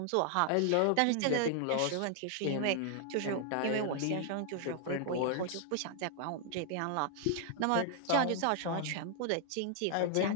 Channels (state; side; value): different; both; correlation 0.00